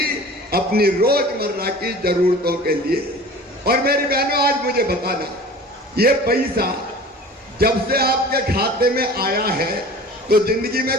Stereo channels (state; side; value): normal; both; correlation 0.42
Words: अपनी रोजमर्रा की जरूरतों के लिए। और मेरी बहनों, आज मुझे बताना, ये पैसा जब से आपके खाते में आया है तो जिंदगी में